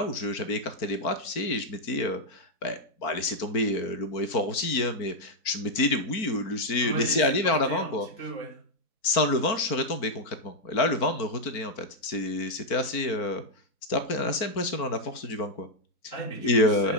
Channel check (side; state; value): right; late; 4.4 ms